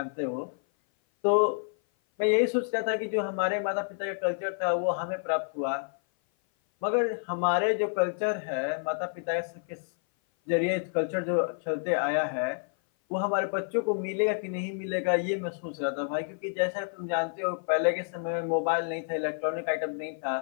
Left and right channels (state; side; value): silent; right; 56 dB below the other